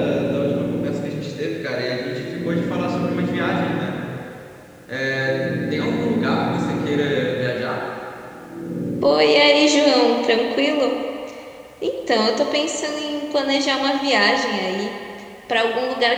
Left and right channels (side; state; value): both; identical; correlation 1.00